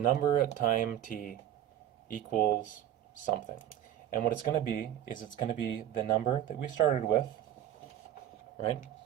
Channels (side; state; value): left; quieter; 11.4 dB